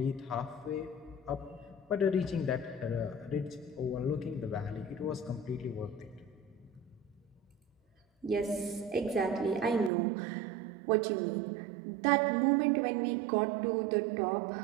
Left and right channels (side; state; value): left; drops out; at 9.9 s